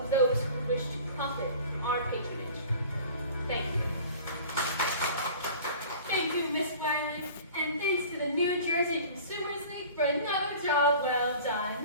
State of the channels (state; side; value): inverted; both; correlation -0.43